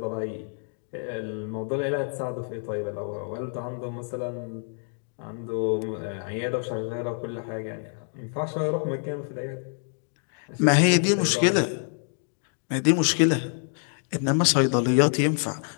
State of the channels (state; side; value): silent; right; 60 dB below the other